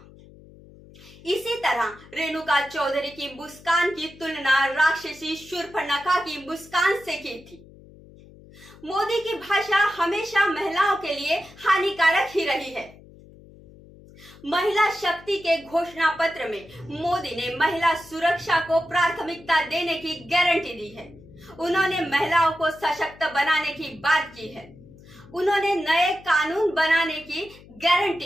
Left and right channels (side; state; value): left; noise; hum, 22 dB below the sound